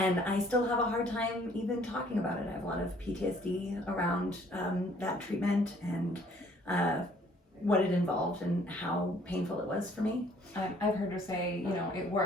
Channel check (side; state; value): both; normal; correlation 0.60